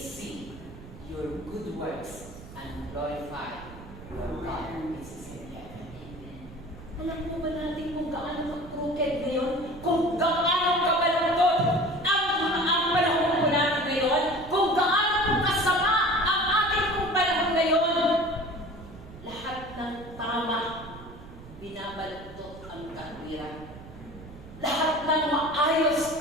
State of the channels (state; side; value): noise; right; rumble, 17 dB below the sound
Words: your good works and glorify your God which is in heaven. Alam mo ba natin kung gaano mag-crooked ngayon? Kung gaano kabalungkot ang panahon po natin ngayon? Kung gaano po kasama ang ating pong panahon ngayon? Lahat ng tama, binabaluktot ang katwiran. Lahat ng maayos,